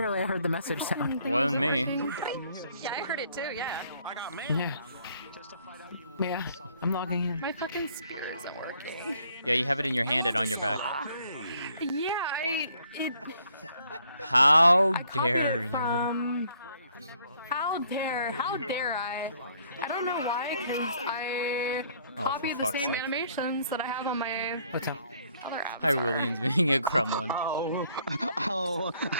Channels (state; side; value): inverted; both; correlation -0.65